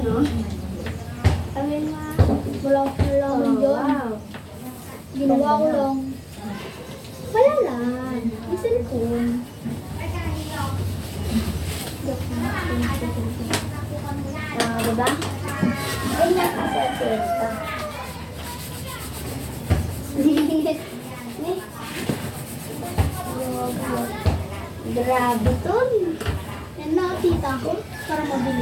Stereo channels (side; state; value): both; identical; correlation 1.00